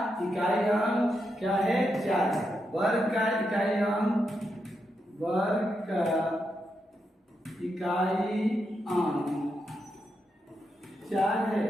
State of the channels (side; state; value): both; normal; correlation 0.84